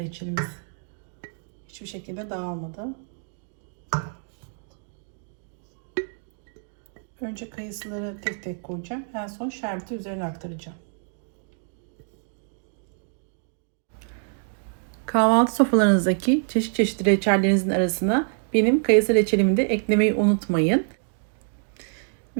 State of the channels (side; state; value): left; silent; 61 dB below the other